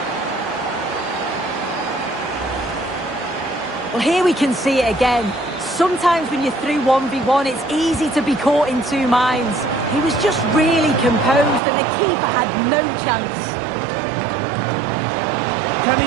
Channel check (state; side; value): drops out; left; at 11.6 s